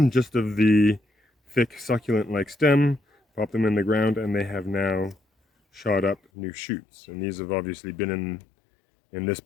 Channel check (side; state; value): right; drops out; at 6.2 s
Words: just of the thick succulent-like stem, pop them in the ground, and they have now shot up new shoots. And these have obviously been in this